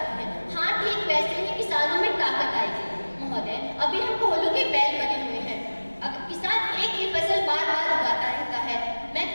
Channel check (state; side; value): inverted; both; correlation -1.00